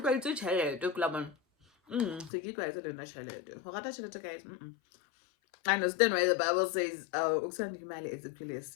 itse tšhelete ke la bona. Se ke tlwaetse le nna tšhelete. Go rata tšhelete guys. I understand why the Bible says ukusanda imali is actually a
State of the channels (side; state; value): right; drops out; at 2.3 s